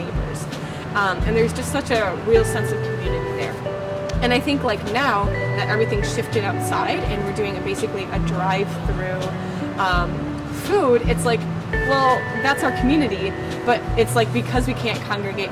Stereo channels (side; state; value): both; identical; correlation 1.00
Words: And there's just such a real sense of community there. And I think like now that everything's shifted outside and we're doing basically a drive-through food, it's like, well, that's our community, but it's like because we can't congregate,